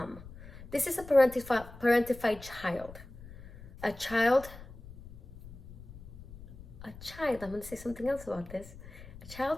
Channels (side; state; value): left; noise; rumble, 16 dB below the sound